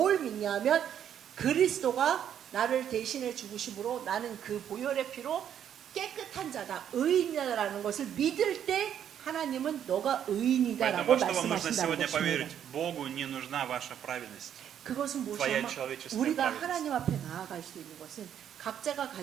믿냐면 그리스도가 나를 대신해 죽으심으로 나는 그 보혈의 피로 깨끗한 자다 의인이다라는 것을 믿을 때 하나님은 너가 의인이다라고 Поэтому, что вам нужно 말씀하신다는 сегодня 것입니다. поверить? Богу не нужна ваша праведность. 그것은 무엇이냐면 человеческая 우리가 праведность. 하나님 앞에 나아갈 수 있는 것은 각자가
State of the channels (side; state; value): left; quieter; 9.5 dB